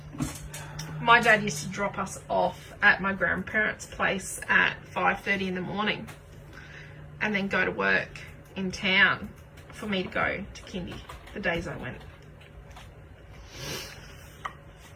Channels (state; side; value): identical; both; correlation 1.00